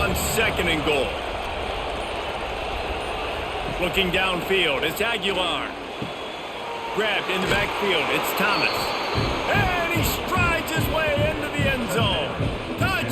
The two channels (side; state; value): both; identical; correlation 1.00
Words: second and goal. Looking downfield, it's Aguilar. Grabbed in the backfield, it's Thomas. And he strides his way into the end zone.